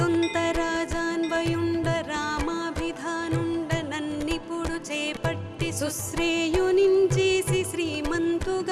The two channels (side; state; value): both; identical; correlation 1.00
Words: రామాభిధానుండ నన్నిపుడు చేపట్టి సుశ్రేయునించేసి